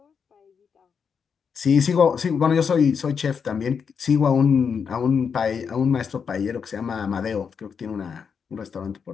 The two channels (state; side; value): quieter; right; 6.4 dB